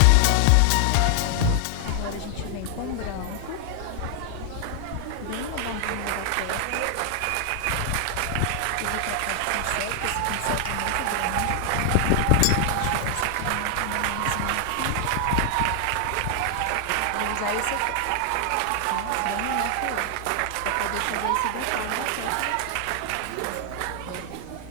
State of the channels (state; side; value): different; both; correlation 0.00